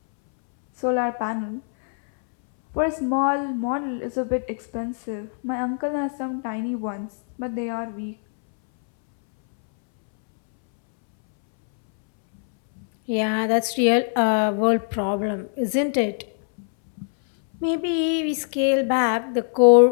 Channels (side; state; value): right; silent; 64 dB below the other